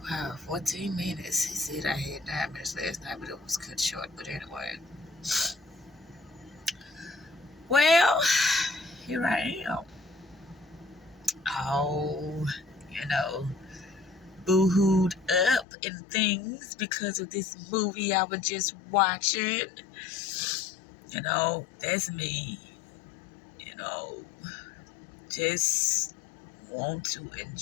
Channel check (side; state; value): right; drops out; at 15.7 s